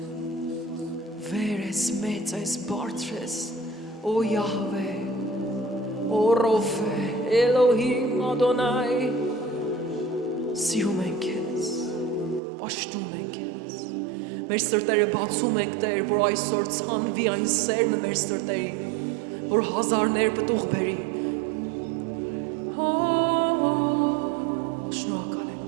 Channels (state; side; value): drops out; left; at 12.4 s